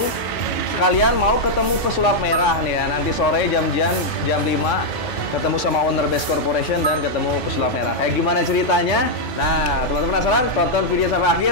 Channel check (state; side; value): late; right; 1.9 ms